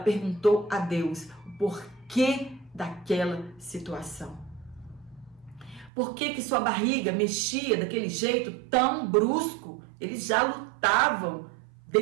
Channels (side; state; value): left; drops out; at 5.9 s